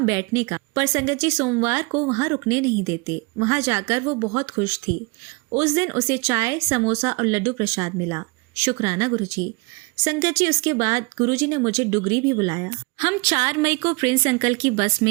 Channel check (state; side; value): quieter; left; 28.7 dB